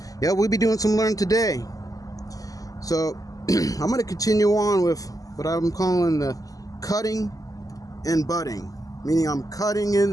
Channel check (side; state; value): right; late; 0.17 ms